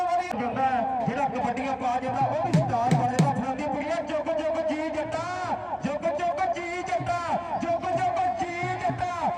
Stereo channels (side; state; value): both; identical; correlation 1.00